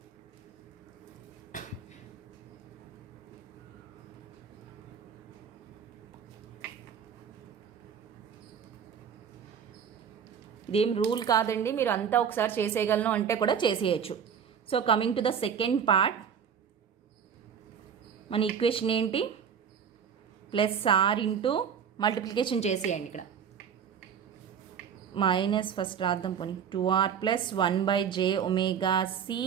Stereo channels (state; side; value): quieter; left; 7.6 dB